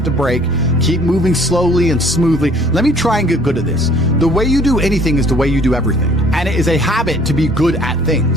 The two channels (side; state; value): both; normal; correlation 0.56